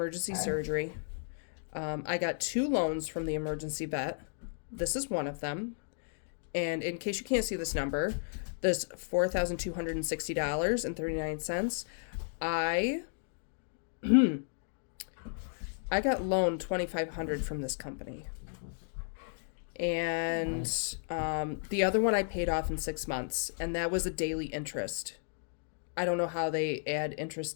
surgery. I got 2 loans from the emergency vet. This is one of them. And in case you can't see this number, this $4,260.39. I got loaned $2,500 from this company. And the other one I paid off in 6 months, and that was a daily interest. I don't know how they add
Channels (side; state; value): right; silent; digital silence